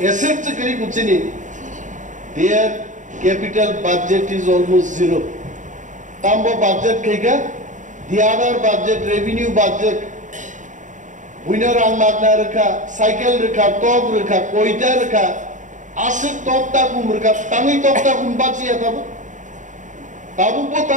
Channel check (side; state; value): left; late; 0.36 ms